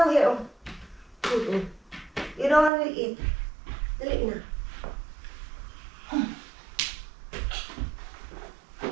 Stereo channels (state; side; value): drops out; left; at 2.7 s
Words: here. Oh. You don't want to eat. Dali na.